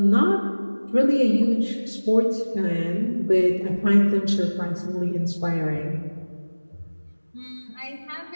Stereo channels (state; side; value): inverted; both; correlation -1.00